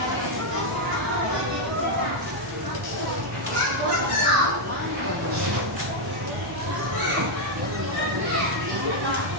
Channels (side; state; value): both; normal; correlation 0.00